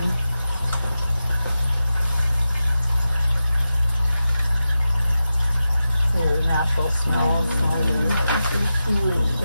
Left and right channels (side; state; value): both; inverted; correlation -0.92